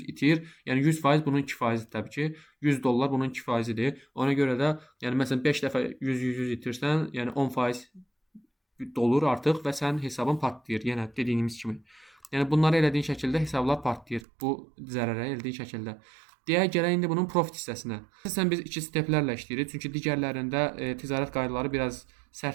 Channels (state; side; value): drops out; left; at 14.2 s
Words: itir. Yəni 100% bunun 2%-dir təbii ki. $100 bunun 2%-dir. Ona görə də yəni məsələn 5 dəfə 100 itirsən, yəni 10% dolur artıq və sənin hesabın partlayır. Yenə dediyimiz kimi. Yəni bunları elədiyin şəkildə hesablar partlayır. Bu zərərə elədiyin şəkildə. Deyək gələk indi bunun profit hissəsinə. Əsasən biz iki steplərlə işləyirik, çünki digərlərində ticarət qaydaları biraz